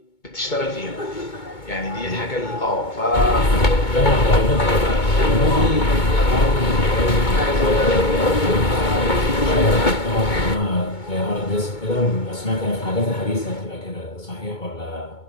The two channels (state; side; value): late; right; 2.2 ms